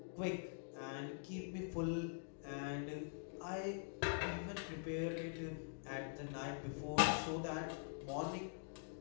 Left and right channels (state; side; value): silent; right; digital silence